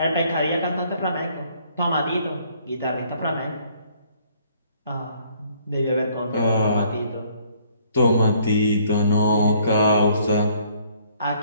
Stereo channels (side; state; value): both; inverted; correlation -0.63